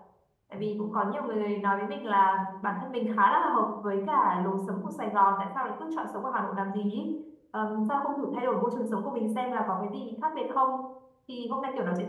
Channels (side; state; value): both; identical; correlation 1.00